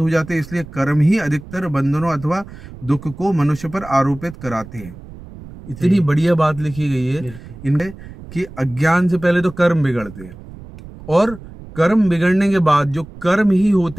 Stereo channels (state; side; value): noise; right; rumble, 16 dB below the sound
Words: जाते हैं। इसलिए कर्म ही अधिकतर बंधनों अथवा दुख को मनुष्य पर आरोपित कराते हैं। इतनी बढ़िया बात लिखी गई है इनमें कि अज्ञान से पहले तो कर्म बिगड़ते हैं और कर्म बिगड़ने के बाद जो कर्म ही